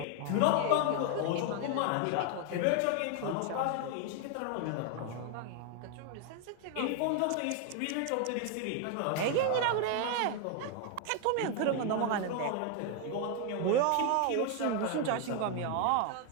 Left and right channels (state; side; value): different; both; correlation 0.00